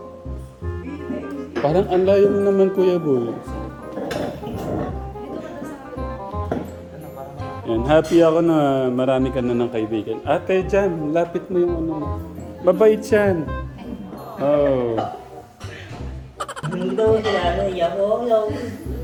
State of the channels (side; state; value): both; identical; correlation 1.00